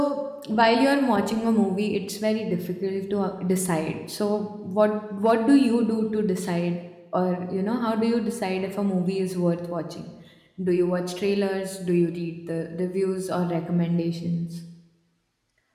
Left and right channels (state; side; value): identical; both; correlation 1.00